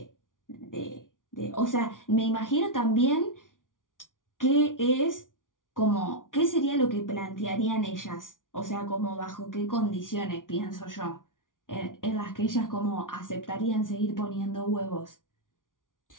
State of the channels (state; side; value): late; right; 0.88 ms